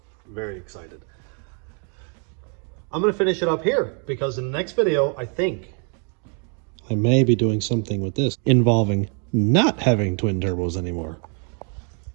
Very excited. I'm going to finish it up here because in the next video, I think I may be doing something with this involving not having twin turbos anymore.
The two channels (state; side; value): quieter; left; 39.9 dB